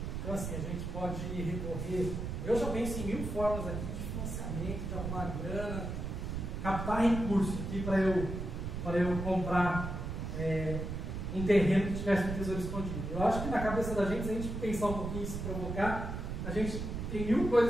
Então, assim, a gente pode recorrer. Eu já penso em 1000 formas aqui de financiamento, de arrumar grana, captar recursos aqui para eu comprar um terreno que tivesse um tesouro escondido. Eu acho que na cabeça da gente, se a gente pensar um pouquinho e se provocar, a gente tem 1000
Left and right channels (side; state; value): right; noise; rumble, 4 dB below the sound